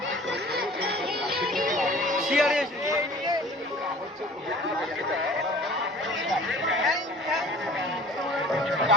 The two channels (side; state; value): both; normal; correlation 0.45